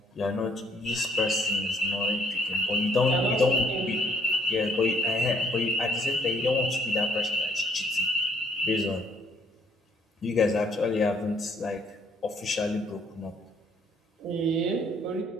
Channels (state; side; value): normal; both; correlation 0.65